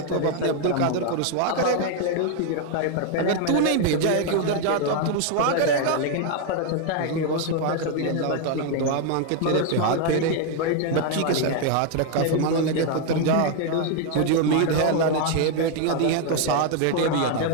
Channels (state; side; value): different; both; correlation 0.01